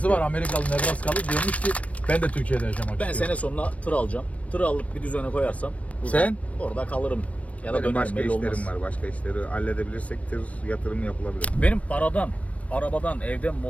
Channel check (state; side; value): late; right; 0.065 ms